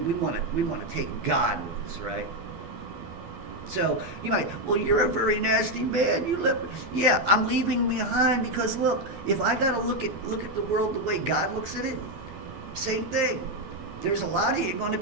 want to take God with us, right? So you might, well, you're a very nasty man. You live, yeah. I'm leaving behind because look, if I gotta look at the world the way God looks at it, same thing. There's a lot of you going to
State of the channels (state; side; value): late; left; 12 ms